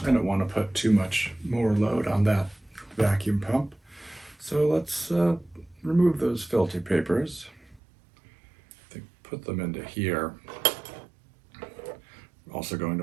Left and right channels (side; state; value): left; drops out; at 7.8 s